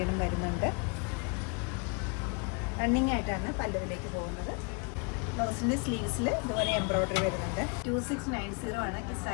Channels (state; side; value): quieter; right; 33.8 dB